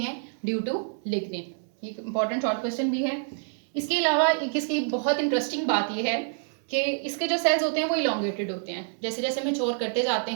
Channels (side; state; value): left; silent; digital silence